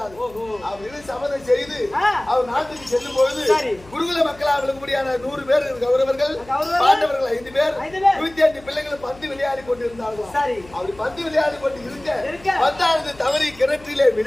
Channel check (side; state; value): left; noise; hum, 22 dB below the sound